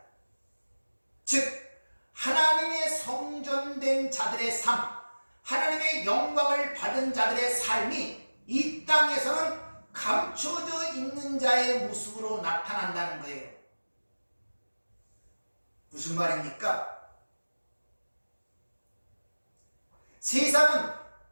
즉 하나님의 성전된 자들의 삶, 하나님의 영광을 받은 자들의 삶이 이 땅에서는 감춰져 있는 자의 모습으로 나타난다는 거예요. 무슨 말입니까? 세상은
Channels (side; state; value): both; inverted; correlation -1.00